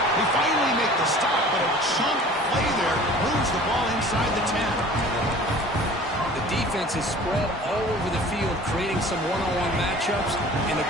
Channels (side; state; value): both; normal; correlation 0.45